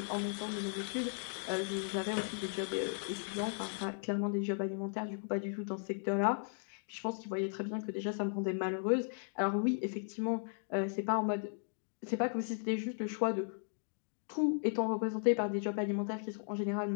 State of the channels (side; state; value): right; silent; digital silence